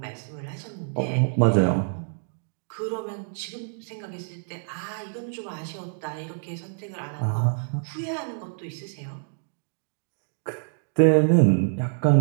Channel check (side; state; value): left; silent; digital silence